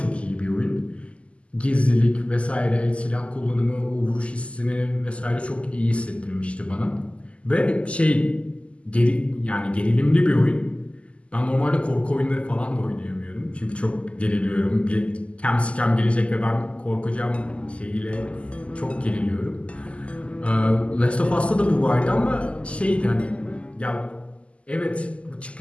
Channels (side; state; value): right; late; 0.058 ms